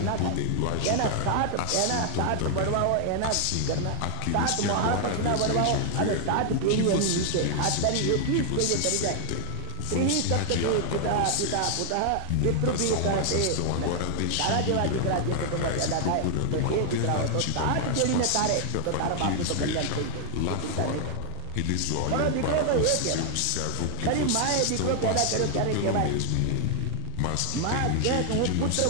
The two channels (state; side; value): different; both; correlation 0.00